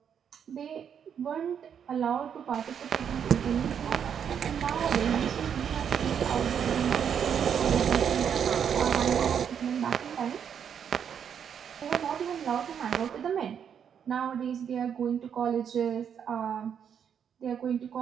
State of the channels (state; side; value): quieter; left; 8.0 dB